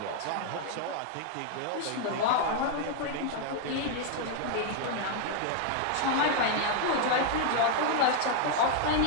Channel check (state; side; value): different; both; correlation 0.00